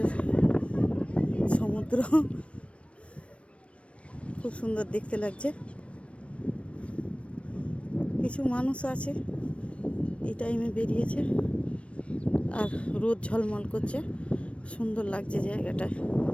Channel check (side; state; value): right; late; 0.061 ms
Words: সমুদ্র, খুব সুন্দর দেখতে লাগছে। কিছু মানুষ আছে, এই টাইমে বেরিয়েছে, আর রোদ ঝলমল করছে, সুন্দর লাগছে জায়গাটা।